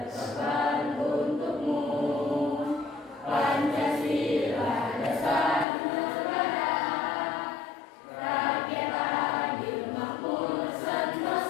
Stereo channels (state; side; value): drops out; right; at 5.7 s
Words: untukmu. Pancasila dasar negara, rakyat adil makmur